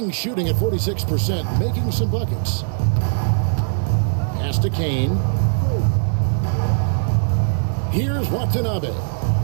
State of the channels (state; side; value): silent; left; digital silence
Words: shooting at 46%, making some buckets. Pass to Kane. Here's Watanabe.